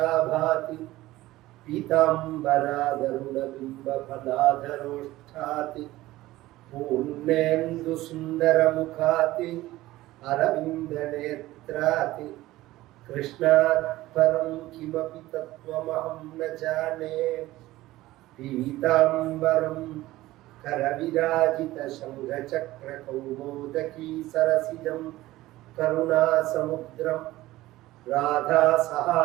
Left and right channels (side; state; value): left; quieter; 17.0 dB